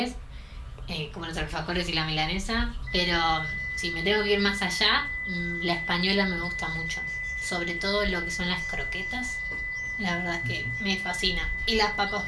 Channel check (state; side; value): identical; both; correlation 1.00